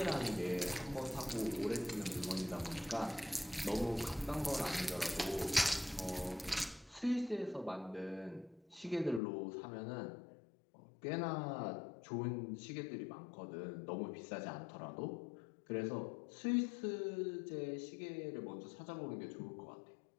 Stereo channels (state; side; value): drops out; right; at 9.2 s